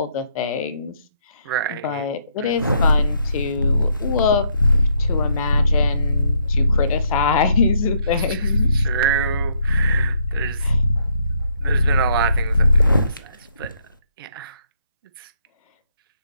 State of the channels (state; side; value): inverted; both; correlation -0.71